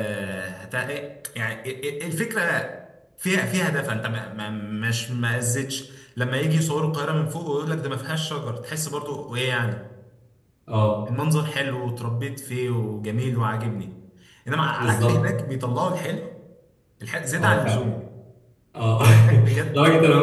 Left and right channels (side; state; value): both; identical; correlation 1.00